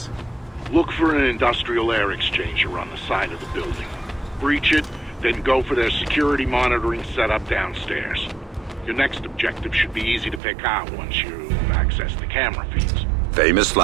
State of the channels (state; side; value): drops out; left; at 10.4 s